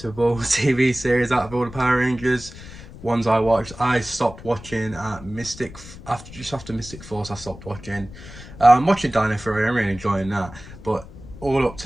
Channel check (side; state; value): left; noise; rumble, 16 dB below the sound